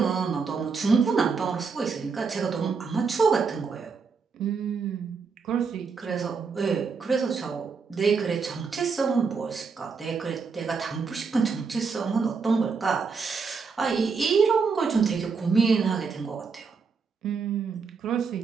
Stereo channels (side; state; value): left; quieter; 5.2 dB